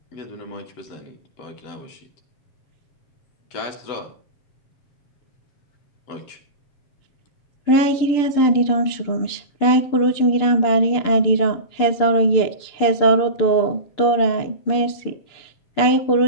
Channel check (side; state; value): right; late; 6.8 ms